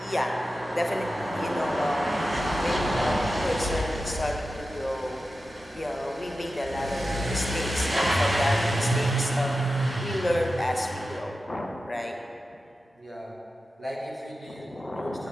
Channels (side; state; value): both; normal; correlation 0.92